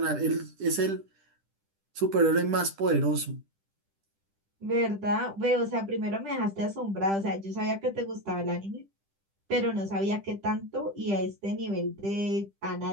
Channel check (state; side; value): late; left; 10 ms